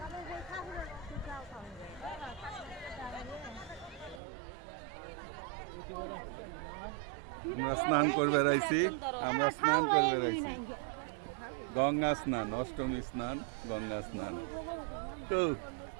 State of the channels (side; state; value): left; drops out; at 4.2 s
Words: আমরা স্নান করবে রাইছি, আমরা স্নান করবে রাইছি। গঙ্গা স্নান, অষ্টমী স্নান, গঙ্গা স্নান। তো